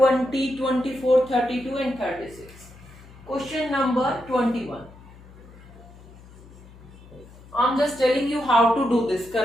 24, 32 and 36. Question number 21. I'm just telling you how to do this.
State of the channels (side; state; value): left; noise; hum, 21 dB below the sound